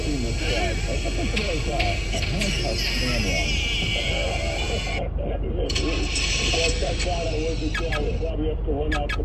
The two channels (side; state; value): both; identical; correlation 1.00